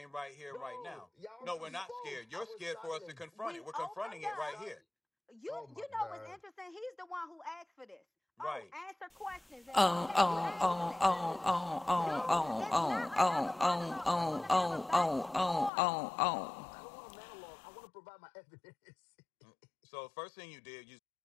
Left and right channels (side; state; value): right; drops out; at 15.7 s